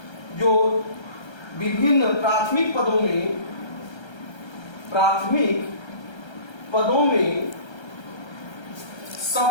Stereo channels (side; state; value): right; late; 1.3 ms